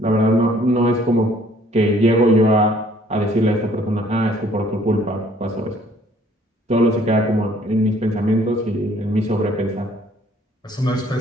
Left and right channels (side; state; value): both; normal; correlation 0.60